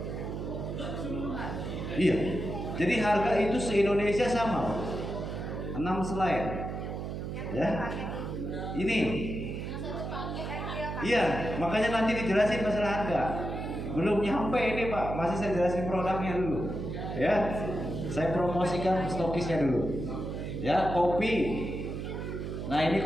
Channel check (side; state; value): right; noise; hum, 5 dB below the sound